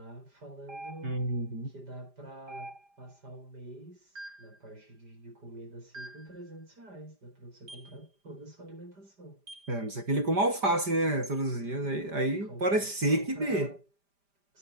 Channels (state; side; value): late; left; 5.0 ms